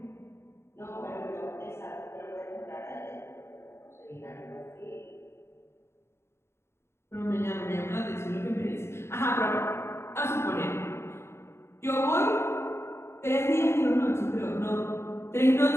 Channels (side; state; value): right; late; 0.12 ms